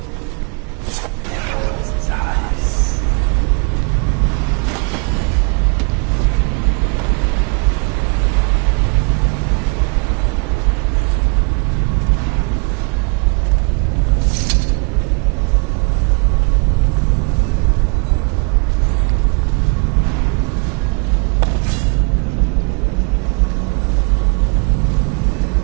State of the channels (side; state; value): left; quieter; 35.0 dB